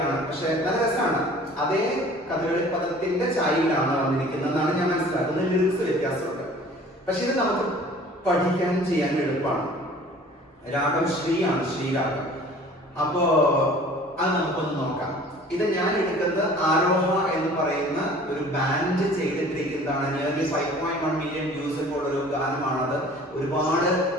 പക്ഷെ നല്ല രസമാണ്. അതേ കഥകളി പദത്തിന്റെ ചായയിലാണ് വന്നിരിക്കുന്നതെന്നാണ് ഞാൻ മനസ്സിലാക്കുന്നത്. ലിറിക്സ് വ്യത്യാസമുണ്ട്, പക്ഷെ ഇത് നമുക്ക് പഠിക്കാൻ ചെയ്യാൻ എളുപ്പമാണ്. രാഗം ശ്രീയാണ്, ശ്രീരാഗം. അപ്പോ അത് നമുക്കൊന്ന് നോക്കാം. ഇത് ഞാൻ എടുക്കുന്നത് ആരോഹ എന്ന് പറയുന്ന ഒരു ബാൻഡ് ചെയ്തിട്ടിരിക്കുന്നതാണ്. നിയർലി 5.1 മില്യൺ വ്യൂസ് ഉള്ള ഒരു ഗാനമാണത്. ഒരുപാട്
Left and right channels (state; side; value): normal; both; correlation 0.48